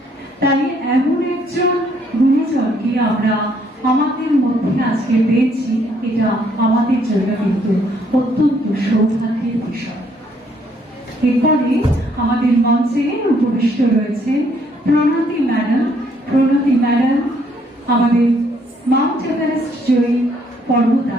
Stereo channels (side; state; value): both; normal; correlation 0.68